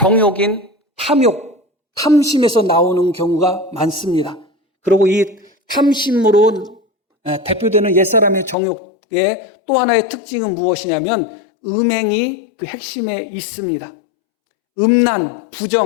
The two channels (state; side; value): drops out; right; at 8.6 s